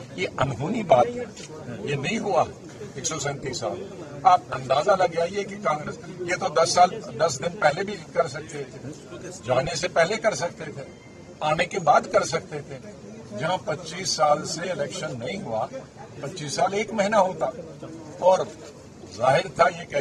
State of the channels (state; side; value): identical; both; correlation 1.00